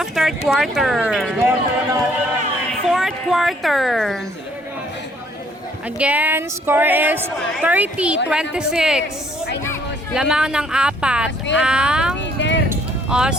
third quarter. Fourth quarter. Again, score is 30-26. Lamang ng apat ang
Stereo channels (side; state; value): both; normal; correlation 0.63